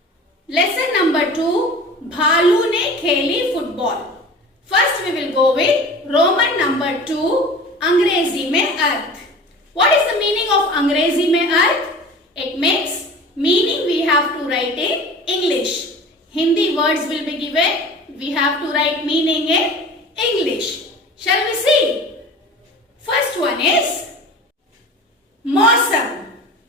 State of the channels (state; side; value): normal; both; correlation 0.39